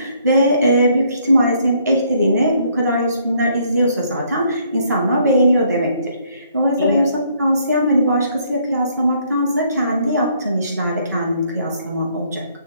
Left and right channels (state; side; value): inverted; both; correlation -0.66